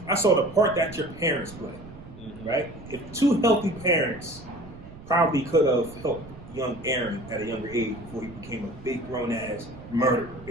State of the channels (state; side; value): noise; right; rumble, 17 dB below the sound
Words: the part that your parents play, right? If two healthy parents probably could have helped young Aaron at a younger age before he became a big grown ass murderer,